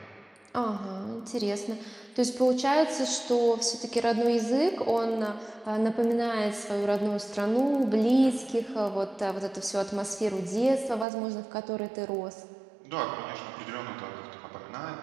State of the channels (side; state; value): left; drops out; at 11.1 s